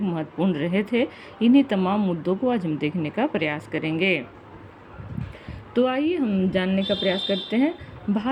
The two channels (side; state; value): both; identical; correlation 1.00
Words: महत्वपूर्ण रहे थे। इन्हीं तमाम मुद्दों को आज हम देखने का प्रयास करेंगे। तो आइए हम जानने का प्रयास करते हैं।